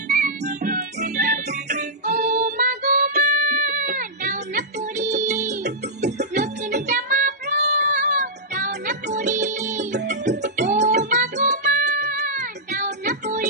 ও মা গো মা, দাও না পরিয়ে নতুন জামা ফ্রক, দাও না পরিয়ে। ও মা গো মা, দাও না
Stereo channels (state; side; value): normal; both; correlation -0.10